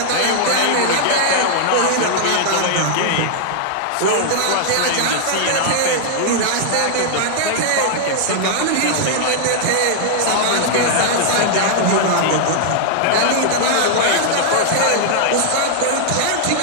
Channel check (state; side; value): different; both; correlation -0.01